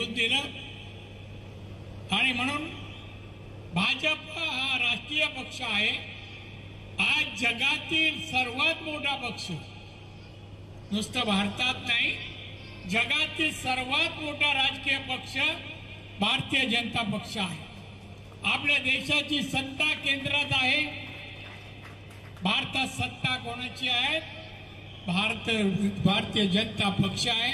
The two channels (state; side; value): identical; both; correlation 1.00